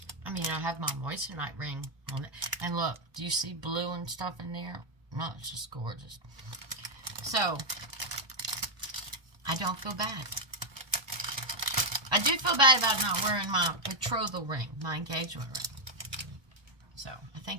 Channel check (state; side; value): late; left; 1.2 ms